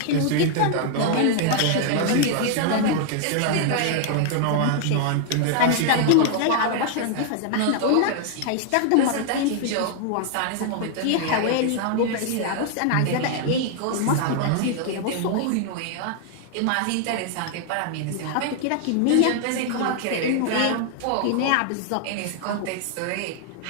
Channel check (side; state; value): both; different; correlation 0.00